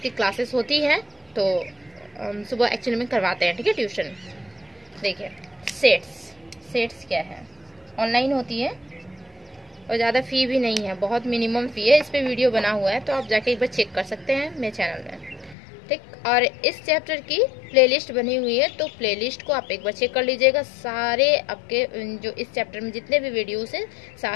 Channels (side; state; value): right; drops out; at 15.6 s